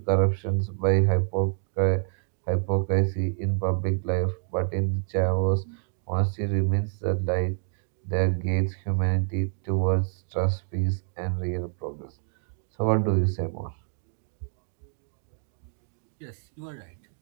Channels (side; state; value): left; silent; digital silence